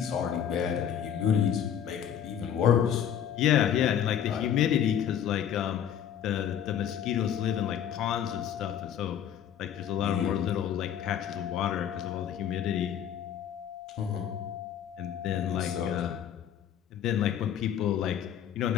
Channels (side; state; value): right; quieter; 9.3 dB